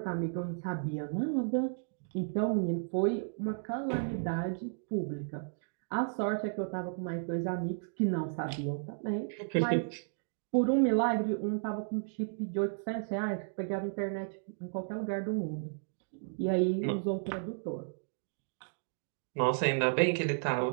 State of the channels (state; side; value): silent; left; digital silence